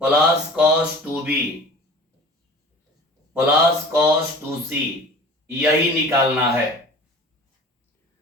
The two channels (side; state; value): both; normal; correlation 0.42